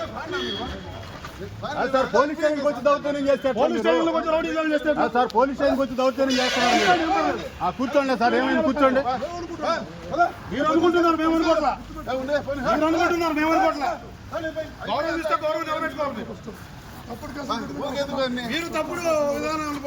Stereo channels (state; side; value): identical; both; correlation 1.00